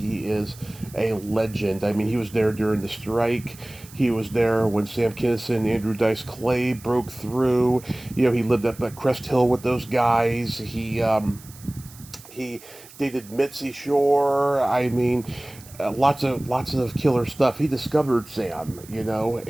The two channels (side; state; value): right; noise; hiss, 20 dB below the sound